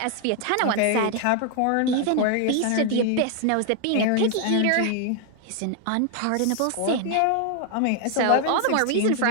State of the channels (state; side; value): different; both; correlation 0.00